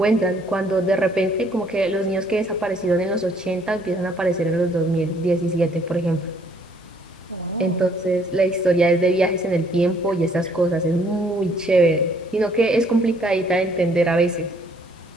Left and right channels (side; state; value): both; normal; correlation 0.64